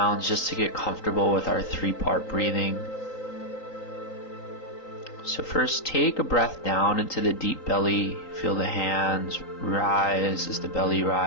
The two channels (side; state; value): right; late; 3.9 ms